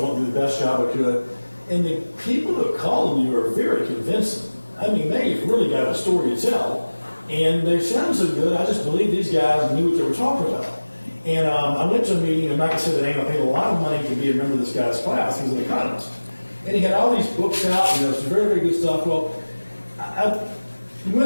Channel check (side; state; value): both; inverted; correlation -1.00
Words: wanting to do the best job I could. And the people that called me were very convincing. I mean, they've really got a story to tell. And they sound so good, I just believe these guys knew what they were talking about. And I went to a meeting, and like I said, I paid a lot of money to be a member of this guy's class. He was an economist. And he had all these books out, some very, very good stuff. Well, when